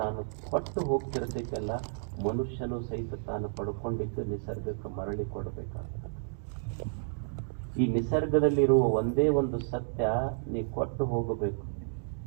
ಕೊಟ್ಟು ಹೋಗ್ತಿರ್ತೈತಲ್ಲ, ಮನುಷ್ಯನು ಸಹಿತ ತಾನು ಪಡ್ಕೊಂಡಿದ್ದು ನಿಸರ್ಗಕ್ಕೆ ಮರಳಿ ಕೊಡಬೇಕಾಗ್ತದೆ. ಈ ನಿಸರ್ಗದಲ್ಲಿರುವ ಒಂದೇ ಒಂದು ಸತ್ಯ, ನೀ ಕೊಟ್ಟು ಹೋಗಬೇಕು.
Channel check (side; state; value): left; silent; digital silence